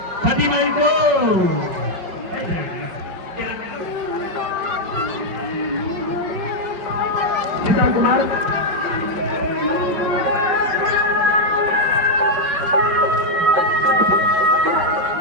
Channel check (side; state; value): left; late; 5.4 ms